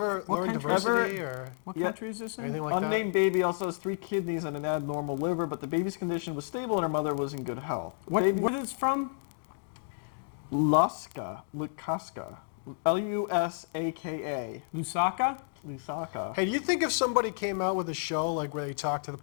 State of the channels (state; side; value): silent; right; digital silence